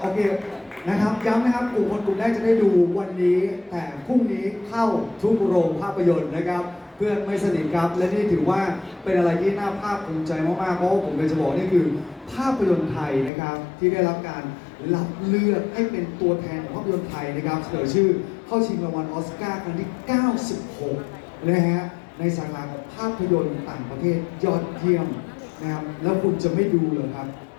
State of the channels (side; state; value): right; drops out; at 13.3 s